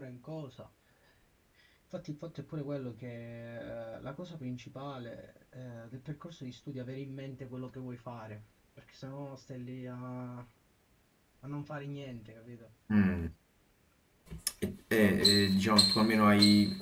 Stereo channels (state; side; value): identical; both; correlation 1.00